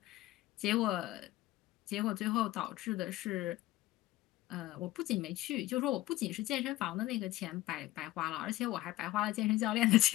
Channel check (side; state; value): right; quieter; 16.9 dB